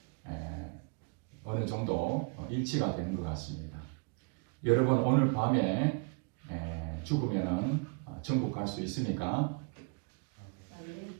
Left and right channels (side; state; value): left; quieter; 35.5 dB